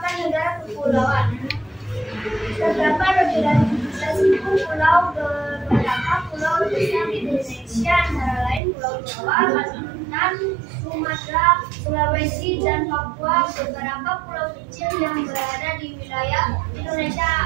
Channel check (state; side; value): drops out; left; at 8.6 s